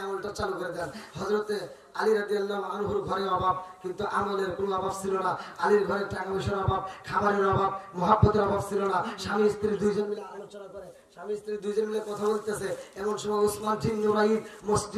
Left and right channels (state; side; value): identical; both; correlation 1.00